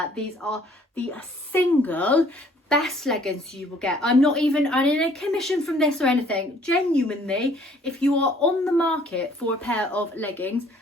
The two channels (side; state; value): both; normal; correlation 0.59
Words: these are the single best leggings you will get. I'm not even earning a commission from this or anything. Genuinely, if you are on the market for a pair of leggings,